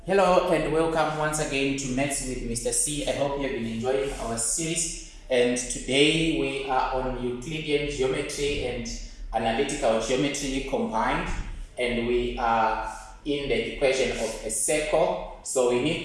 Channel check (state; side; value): identical; both; correlation 1.00